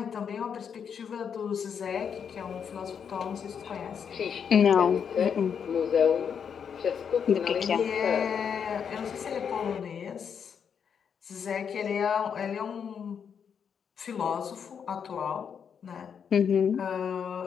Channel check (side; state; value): right; quieter; 7.3 dB